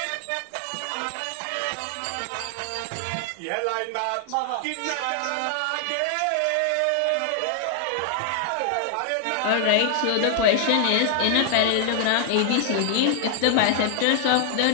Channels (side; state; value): both; different; correlation 0.00